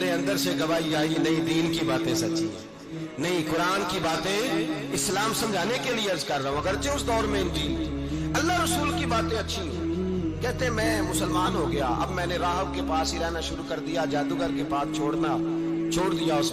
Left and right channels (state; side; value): identical; both; correlation 1.00